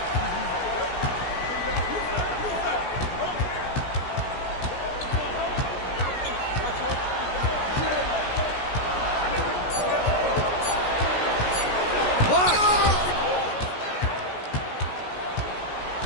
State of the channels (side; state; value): right; late; 16 ms